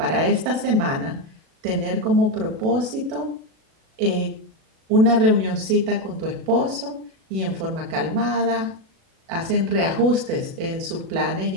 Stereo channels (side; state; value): left; late; 37 ms